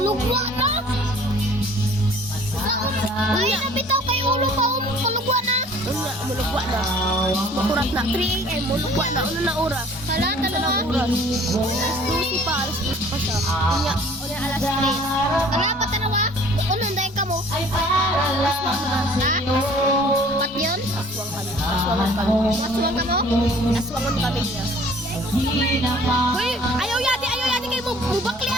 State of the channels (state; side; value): normal; both; correlation 0.52